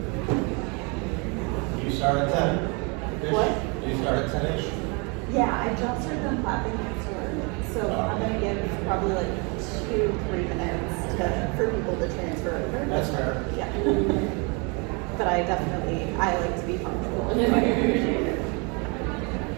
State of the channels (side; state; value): left; quieter; 31.8 dB